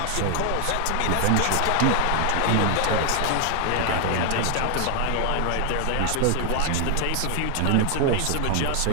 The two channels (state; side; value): different; both; correlation 0.00